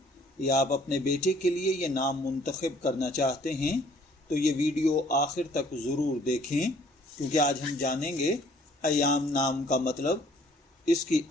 या आप अपने बेटे के लिए ये नाम मुंतखब करना चाहते हैं तो ये वीडियो आखिर तक ज़रूर देखें, क्योंकि आज हम जानेंगे अयान नाम का मतलब, इसकी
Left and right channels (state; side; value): normal; both; correlation 0.59